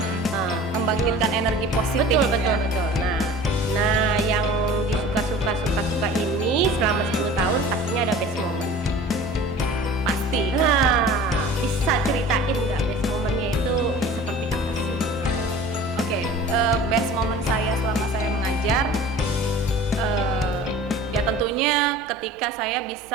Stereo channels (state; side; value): normal; both; correlation 0.42